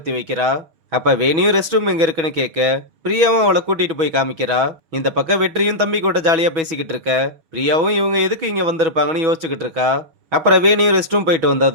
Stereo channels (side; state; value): left; late; 6.2 ms